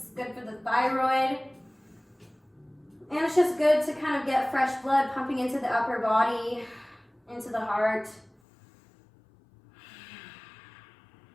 Good for the thyroid. And it's just good to kind of get fresh blood pumping into the upper body, into the heart.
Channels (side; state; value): right; drops out; at 8.3 s